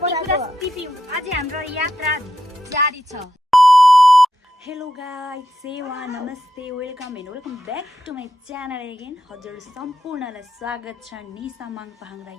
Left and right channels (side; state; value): both; normal; correlation 0.85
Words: अझै हाम्रो यात्रा जारी छ। हेलो गाइस, सेवा नमस्ते, welcome and welcome back to my channel again. हजुर सम्पूर्णलाई स्वागत छ निसा माङपाहाङरा